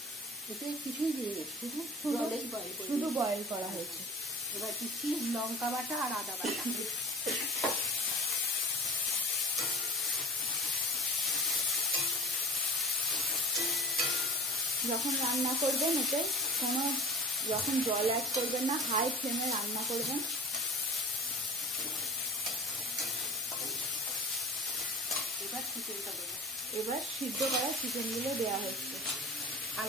এতে কিছুই দিয়ে শুধু বয়েল করা হয়েছে। এবার দিচ্ছি লঙ্কা বাটা আর আদা বাটা। যখন রান্না করবেন এতে যখন জল অ্যাড করবেন না, হাই ফ্লেমে রান্না করবেন। এবার সিদ্ধ করা চিকেনগুলো দেওয়া হচ্ছে,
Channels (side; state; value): both; normal; correlation 0.38